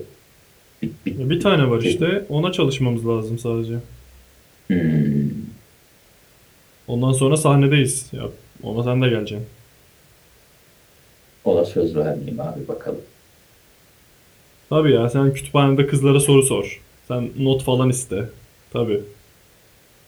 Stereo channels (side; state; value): both; identical; correlation 1.00